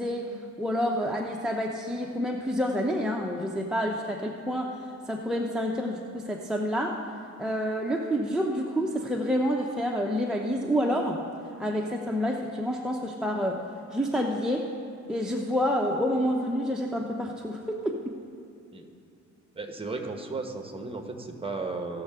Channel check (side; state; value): both; normal; correlation 0.68